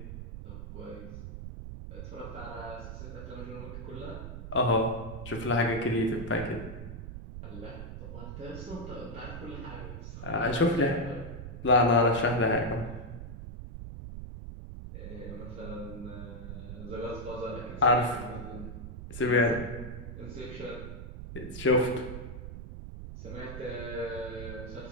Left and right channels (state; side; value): noise; right; rumble, 9 dB below the sound